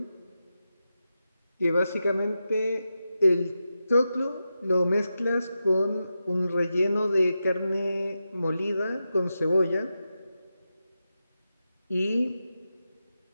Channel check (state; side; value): inverted; both; correlation -0.90